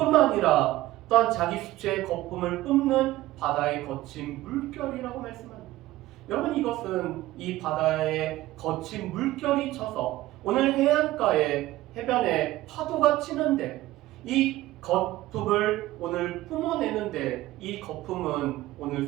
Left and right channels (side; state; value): left; quieter; 16.4 dB